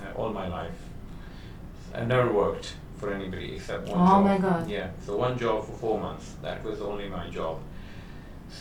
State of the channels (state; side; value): identical; both; correlation 1.00